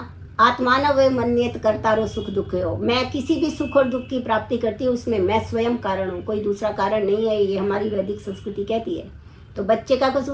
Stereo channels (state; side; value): identical; both; correlation 1.00